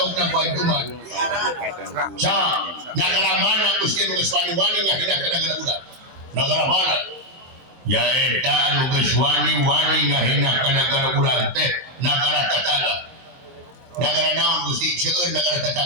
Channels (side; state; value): left; late; 23 ms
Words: baik kumaha Kabupaten Kuningan. negara mana Gusti nu geus wani-wani ngahendak ka negara urang negara mana ya eta anu geus wani-wani ngahendak ka negara urang teh negara tetangga. Negara naon Gusti seueur negara